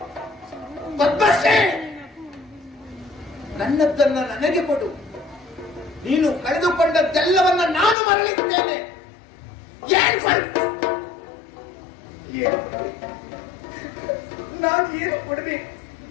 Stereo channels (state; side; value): drops out; right; at 8.0 s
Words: ಪದ್ಮಶ್ರೀ, ನನ್ನದನ್ನ ನನಗೆ ಕೊಡು. ನೀನು ಕಳೆದುಕೊಂಡದ್ದೆಲ್ಲವನ್ನ ನಾನು ಮರಳಿದ್ದೇನೆ. ನಾನು ಏನು ಕೊಡಬೇಕು?